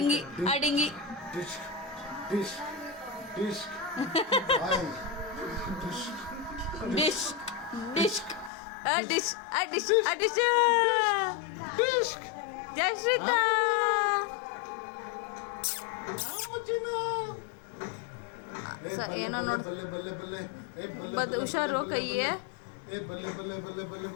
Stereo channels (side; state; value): right; drops out; at 8.5 s